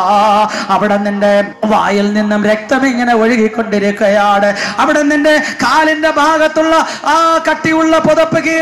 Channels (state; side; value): identical; both; correlation 1.00